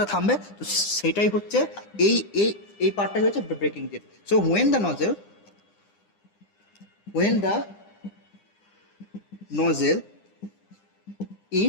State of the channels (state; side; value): late; right; 9.9 ms